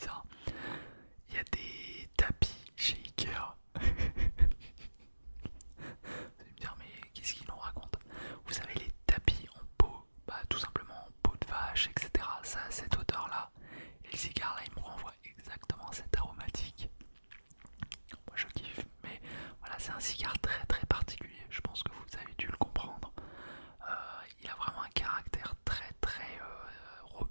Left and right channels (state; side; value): inverted; both; correlation -1.00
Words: Il y a des tapis chez Ikea. Vous allez me dire, mais qu'est-ce qu'il nous raconte? Vous savez, les tapis en peau, bah, tout simplement en peau de vache, etc. Ça a cette odeur-là. Et le cigare là, il me renvoie exactement cette aromatique. Moi je kiffe, mais voilà, c'est un cigare très très particulier. Je pense que vous avez dû le comprendre. Il a vraiment un caractère très très